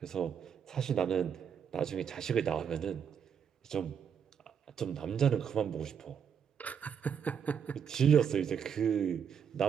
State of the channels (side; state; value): left; quieter; 7.7 dB